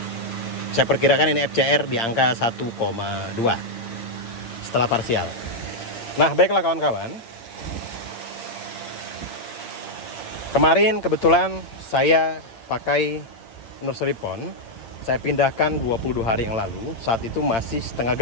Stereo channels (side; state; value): right; late; 8.7 ms